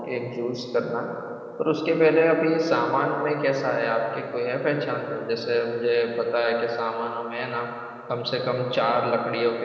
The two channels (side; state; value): both; identical; correlation 1.00